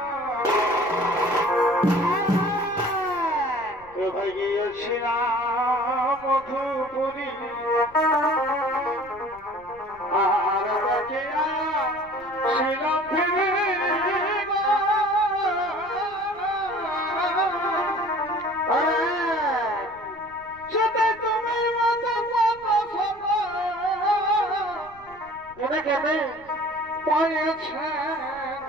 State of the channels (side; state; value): left; noise; rumble, 26 dB below the sound